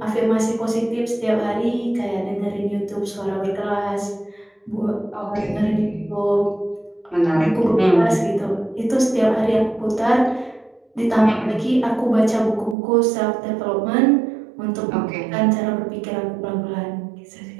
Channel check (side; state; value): left; drops out; at 12.8 s